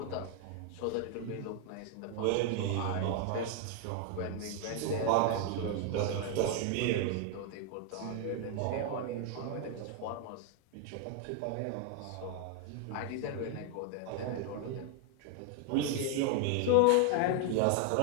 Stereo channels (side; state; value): both; different; correlation 0.00